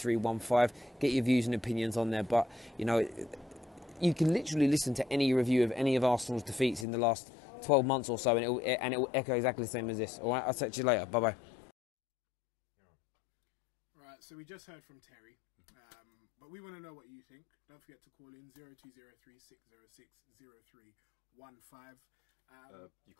Get your views and opinions on there. But you can literally listen to any review of any of Arsenal's defeats in the last 12 months or so, and it will echo exactly the same as this. All right, I'll talk to you later. Bye bye. Right, so we just heard from Terry, but we want to know what you think. Don't forget to call in 0203 606 0315. You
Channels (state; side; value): drops out; right; at 6.9 s